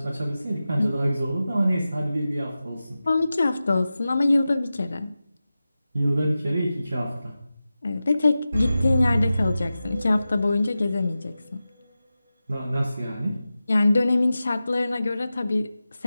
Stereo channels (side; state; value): both; inverted; correlation -0.94